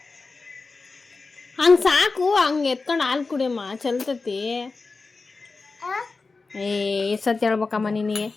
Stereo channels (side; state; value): right; quieter; 4.0 dB